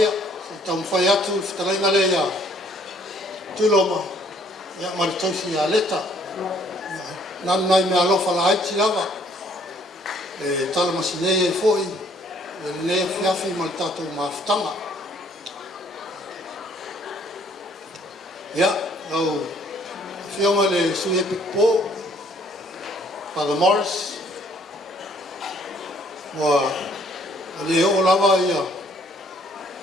tau mwhai atu whtarainga le ia tuloma ia maritausi ia leta nanai me alofa la haiti lava e tala masinei e foi e le fiafi mal tatou maftanga ia au fionga le sui epic po Father Morris wa le o lava ia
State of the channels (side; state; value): both; normal; correlation 0.62